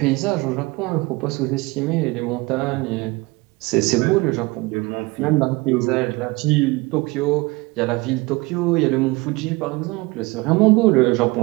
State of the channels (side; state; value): left; quieter; 23.7 dB